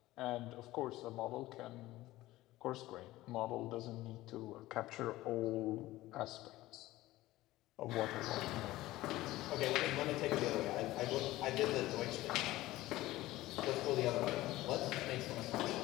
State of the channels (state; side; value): quieter; right; 17.1 dB